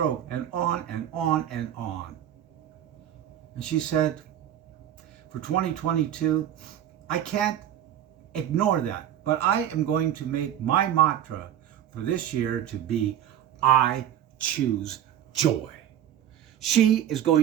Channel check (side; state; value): left; quieter; 10.9 dB